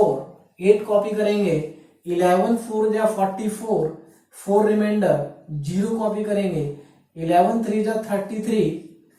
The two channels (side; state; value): both; identical; correlation 1.00